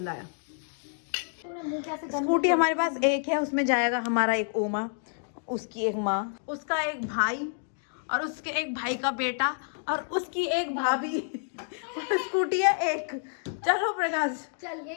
आया। स्कूटी हमारे पास एक है, उसमें जाएगा हमारा एक ओमा, उसकी एक माँ, उसका एक भाई, और उसके एक भाई का बेटा, और उसकी एक भाभी। और स्कूटी है एक। चलो प्रकाश, चल यही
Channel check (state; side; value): silent; right; digital silence